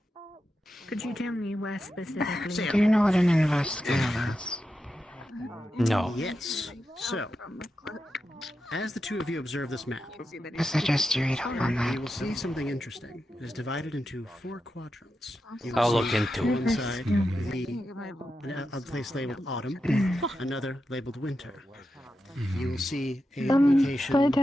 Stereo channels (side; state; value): both; normal; correlation 0.89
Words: Could you tell me where specifically? Do you know what an investigator is? No. Yes. So, as the two of you observe this map, I suggest you read up on that. you will see something interesting. It is divided into 4 quadrants. You will I'll see look into one it. side a place labeled autumn, another labeled winter. You will see a location